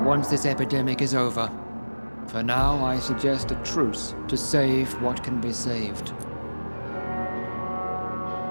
once this epidemic is over. For now, I suggest a truce to save what can be saved.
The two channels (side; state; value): both; inverted; correlation -1.00